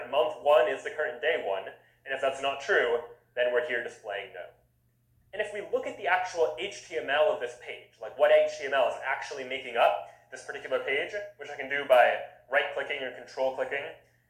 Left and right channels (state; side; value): identical; both; correlation 1.00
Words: month 1, is the current day 1, and if that's not true, then we're here displaying no. And if we look at the actual HTML of this page, like what HTML is actually making up this particular page, which I can do by right-clicking or control-clicking